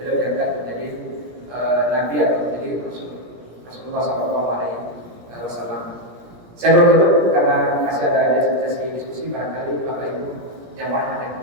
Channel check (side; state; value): left; late; 17 ms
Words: diangkat menjadi Nabi atau menjadi Rasulullah SAW. Saya bertutup karena masih ada sesi diskusi, barangkali Bapak Ibu jamaah yang